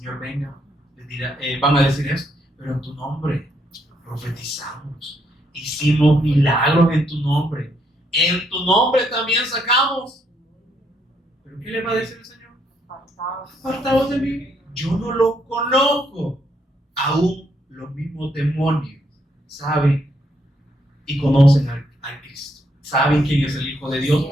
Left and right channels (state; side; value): normal; both; correlation 0.74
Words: venga, les dirá, van a decir esto: pero en tu nombre profetizamos, hicimos milagros en tu nombre, en tu nombre también sacamos. ¿Pero qué le va a decir el Señor? Apartaos de mí, yo no lo conozco. Aún los mismos demonios saben y conocen al Cristo, saben quién es el Hijo de Dios